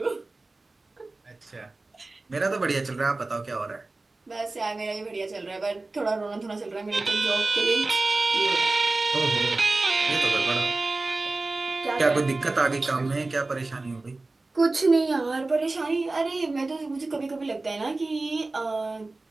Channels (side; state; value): left; quieter; 3.2 dB